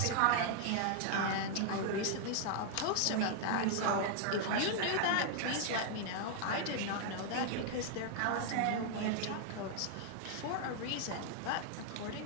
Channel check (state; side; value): different; both; correlation 0.00